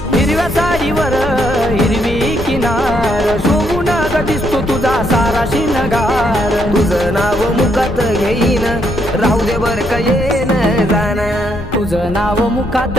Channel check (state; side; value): noise; left; rumble, 10 dB below the sound